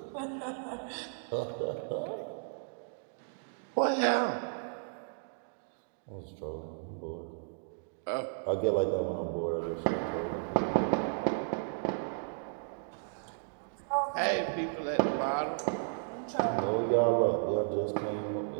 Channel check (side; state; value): left; silent; digital silence